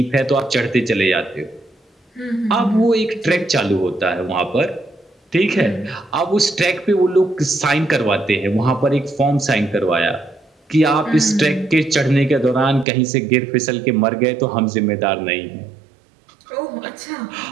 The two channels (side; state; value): left; drops out; at 12.9 s